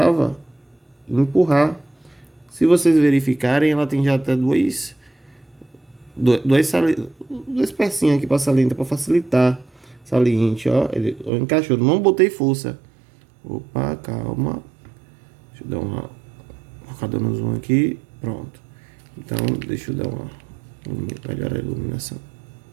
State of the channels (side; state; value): left; drops out; at 11.3 s